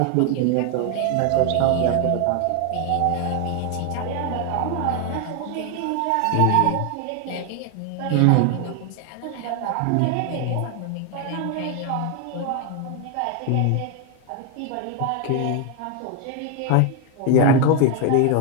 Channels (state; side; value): different; both; correlation 0.01